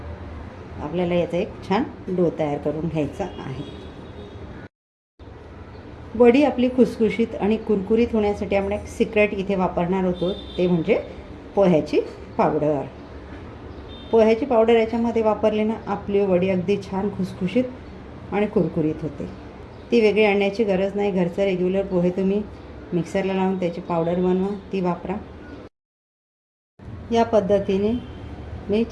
आपल्याला याचा एक छान डो तयार करून घ्यायचा आहे. वडी आपली खुसखुशीत आणि कुरकुरीत होण्यासाठी आपण एक सिक्रेट इथे वापरणार होतो, ते म्हणजे पोह्याची पावडर. पोह्याची पावडर याच्यामध्ये वापरली ना, आपली वडी अगदी छान खुसखुशीत आणि कुरकुरीत होते. ती वेगळी आणण्याची गरज नाही. घरचं रेग्युलर पोहे तुम्ही मिक्सरला लावून त्याची पावडर बनवा, ती वापरा. या पद्धतीने मी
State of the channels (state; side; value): identical; both; correlation 1.00